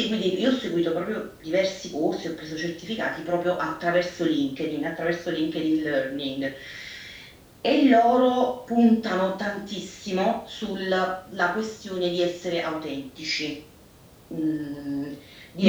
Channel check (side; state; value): both; identical; correlation 1.00